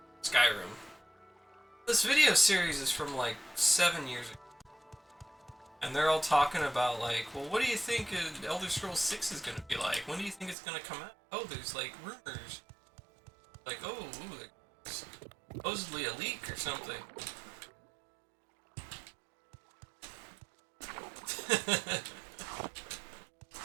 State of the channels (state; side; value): drops out; left; at 10.6 s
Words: Skyrim. This video series is from like 7 years ago. And they're all talking about like, well, what do you think Elder Scrolls 6 is going to be like? When do you think it's going to come out? Oh, there's like rumors. Like, oh, ooh, there's supposedly a leak or something.